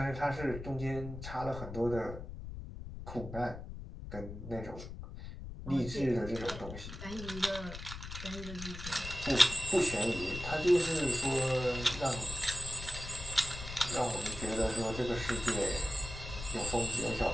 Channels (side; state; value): left; noise; rumble, 10 dB below the sound